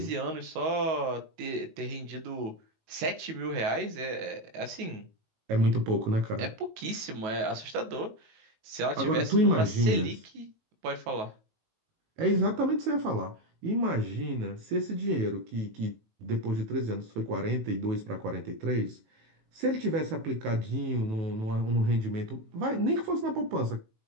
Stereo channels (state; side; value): late; left; 19 ms